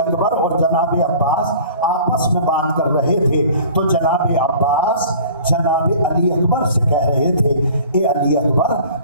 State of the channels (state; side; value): inverted; both; correlation -0.46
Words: اور جناب عباس آپس میں بات کر رہے تھے تو جناب عباس جناب علی اکبر سے کہہ رہے تھے اے علی اکبر